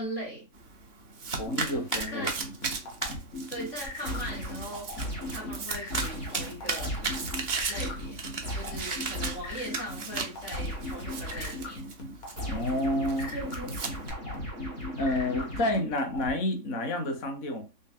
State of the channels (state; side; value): late; right; 3.6 ms